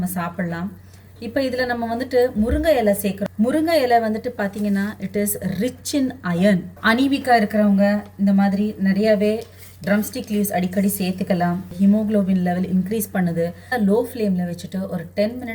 சாப்பிட்லாம். இப்போ இதில் நம்ம வந்துட்டு முருங்கை இலை சேர்க்குறோம். முருங்கை இலை வந்துட்டு பார்த்தீங்கன்னா it is rich in iron. அனீமிக்கா இருக்கிறவங்க இந்த மாதிரி நிறையாவே ட்ரம்ஸ்டிக் லீவ்ஸ் அடிக்கடி சேர்த்துக்கலாம். ஹீமோக்ளோபின் லெவல் இன்க்ரீஸ் பண்ணுது. லோ ஃப்ளேமில் வச்சுட்டு ஒரு 10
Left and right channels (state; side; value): identical; both; correlation 1.00